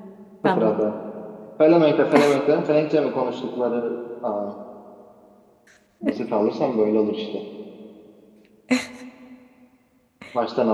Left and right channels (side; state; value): both; identical; correlation 1.00